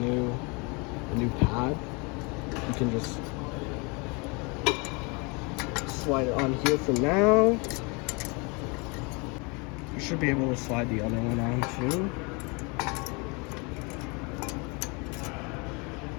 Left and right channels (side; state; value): right; quieter; 30.1 dB